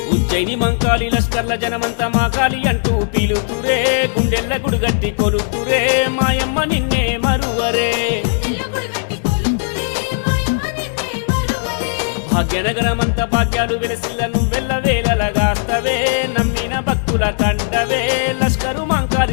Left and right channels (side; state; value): right; silent; 68 dB below the other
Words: ఉజ్జయిని మంకాలి లష్కర్ల జనమంతా మాకాలి అంటూ పీలుతురే గుండెల్ల గుడిగట్టి కొలుతురే మాయమ్మ నిన్నే మరువరే భాగ్యనగరమంత భాగ్యాలు వెలసిల్ల నువ్వెల్ల వేలలగాస్తవే నమ్మిన భక్తుల కండవే లష్కరు